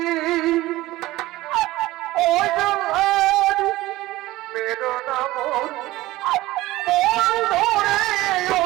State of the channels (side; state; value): left; quieter; 17.7 dB